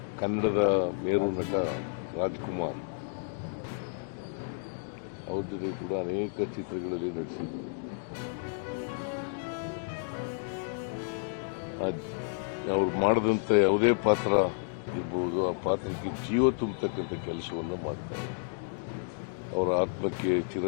ಕನ್ನಡದ ಮೇರು ನಟ ರಾಜ್ಕುಮಾರ್, ಅವ್ರ ಜೊತೆ ಕೂಡ ಅನೇಕ ಚಿತ್ರಗಳಲ್ಲಿ ನಟಿಸಿದ್ರು. ಅವ್ರು ಮಾಡಿದಂಥ ಯಾವುದೇ ಪಾತ್ರ ಇರ್ಬೋದು, ಆ ಪಾತ್ರಕ್ಕೆ ಜೀವ ತುಂಬತಕ್ಕಂಥ ಕೆಲಸವನ್ನು ಮಾಡ್ತಾರೆ. ಅವರ ಆತ್ಮಕ್ಕೆ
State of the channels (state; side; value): silent; right; digital silence